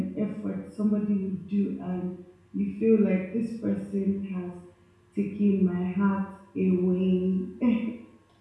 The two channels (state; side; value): identical; both; correlation 1.00